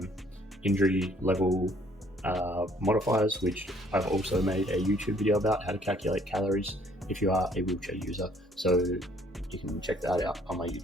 injury level modifiers, which I've also made a YouTube video about how to calculate calories if you are a wheelchair user. So you can check that out on my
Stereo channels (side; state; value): both; normal; correlation 0.61